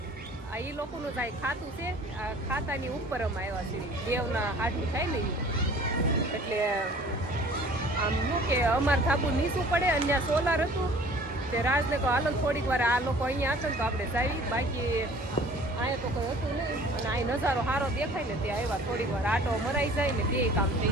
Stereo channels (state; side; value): normal; both; correlation 0.49